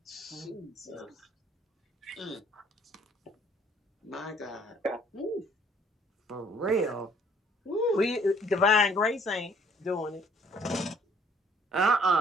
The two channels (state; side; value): normal; both; correlation 0.61